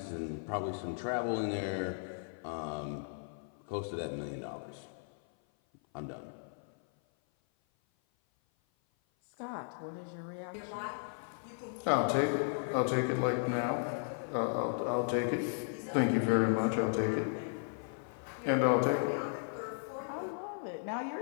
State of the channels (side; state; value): right; silent; 54 dB below the other